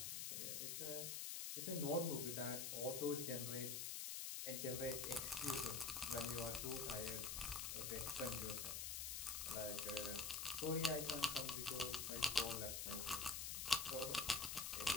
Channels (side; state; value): left; noise; hiss, 2 dB below the sound